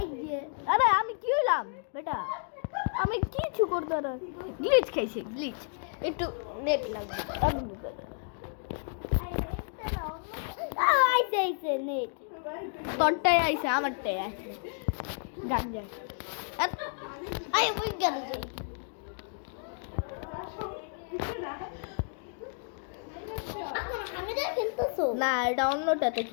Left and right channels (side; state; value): right; silent; 57 dB below the other